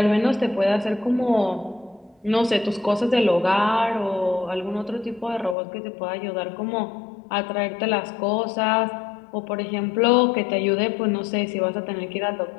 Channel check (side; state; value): right; drops out; at 5.6 s